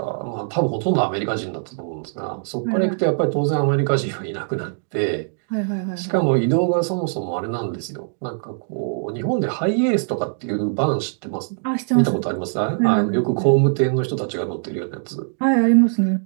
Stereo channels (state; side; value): silent; left; digital silence